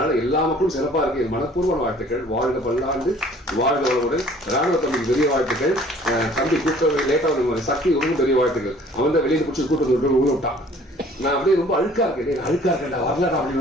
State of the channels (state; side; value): normal; both; correlation 0.53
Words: எல்லா மக்களும் சிறப்பா இருக்கு. மனப்பூர்வமான வாழ்த்துக்கள். வாழ்க பல்லாண்டு, வாழ்க வளமுடன். ராணுவ தம்பிக்கு பெரிய வாழ்த்துக்கள். தம்பி கூட்ட லேட்டா சக்தி ரொம்ப பெரிய வாழ்த்துக்கள். அவன் தான் வெளியே பிடிச்சி கூட்டத்தை விட்டான். நான் அப்படியே ரொம்ப அழுக்கா இருக்கேன்டா வரலடா